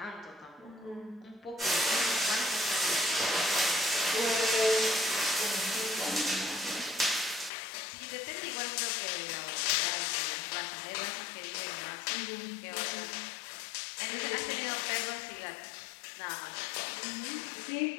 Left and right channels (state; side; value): drops out; right; at 7.5 s